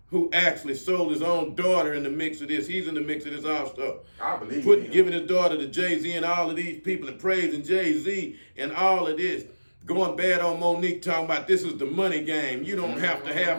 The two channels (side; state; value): both; inverted; correlation -1.00